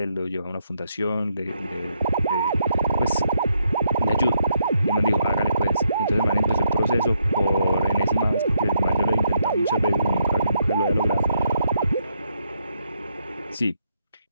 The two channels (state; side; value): inverted; both; correlation -0.77